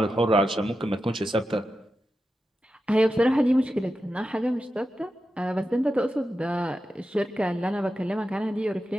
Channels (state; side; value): normal; both; correlation 0.90